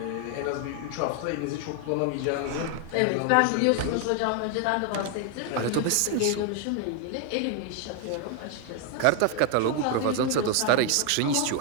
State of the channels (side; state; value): both; different; correlation 0.01